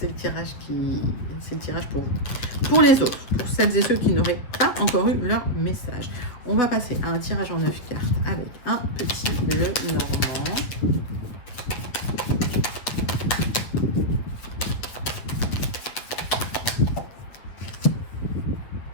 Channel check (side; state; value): right; late; 8.0 ms